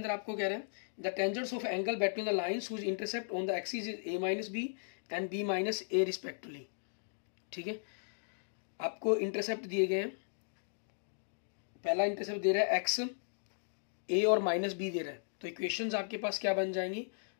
आपको कह रहे हैं, the tangents of angle between the lines whose intercept on the axis is a minus B and b minus A respectively, ठीक है। आपको इंटरसेप्ट दिए गए हैं, पहला इंटरसेप्ट दे रहा है x, a और माइनस b दे रहा है, तो इक्वेशंस आपके पास क्या बन जाएंगी,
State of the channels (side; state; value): right; silent; digital silence